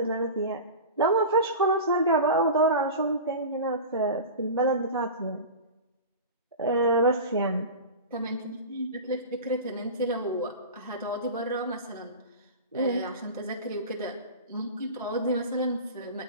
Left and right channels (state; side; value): inverted; both; correlation -0.30